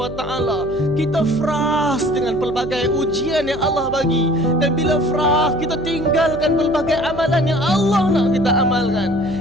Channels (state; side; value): noise; right; hum, 12 dB below the sound